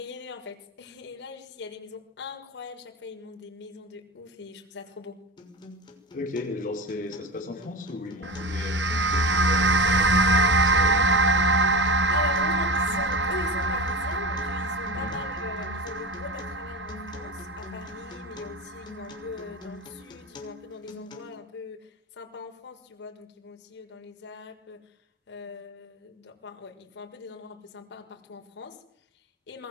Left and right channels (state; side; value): normal; both; correlation 0.26